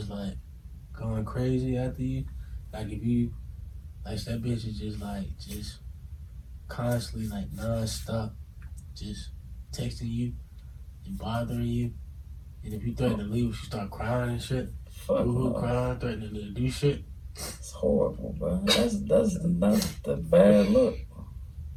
like going crazy after you? Like if you, like that bitch is just like, just constantly like non-stop, just texting you and bothering you. And if you threaten to leave, she start crying and shit. Fuck Boo-hoo, no. crying, threatening to do shit. It's horrible, bro. That's the bad look.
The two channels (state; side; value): identical; both; correlation 1.00